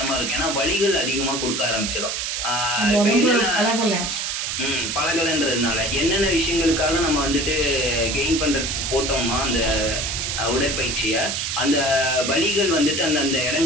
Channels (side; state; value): right; noise; hiss, 2 dB below the sound